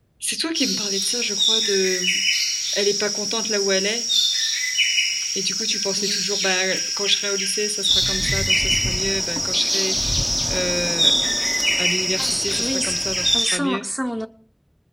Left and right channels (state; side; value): identical; both; correlation 1.00